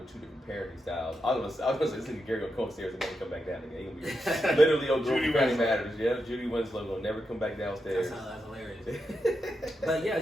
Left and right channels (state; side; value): normal; both; correlation 0.86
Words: two different parenting styles. I was gonna say this nigga Gary gonna come upstairs and never come back down again. He gonna be literally on Judy Family Matters. Yeah, Judy Winslow gonna never come back downstairs. That's hilarious. But yeah,